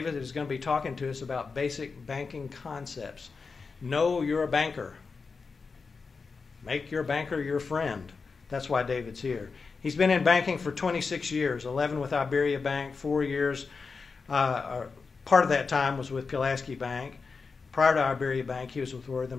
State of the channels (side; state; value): right; quieter; 4.8 dB